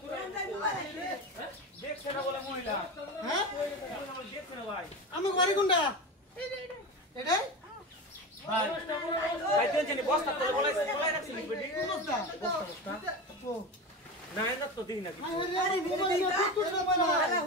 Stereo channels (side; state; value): both; normal; correlation 0.24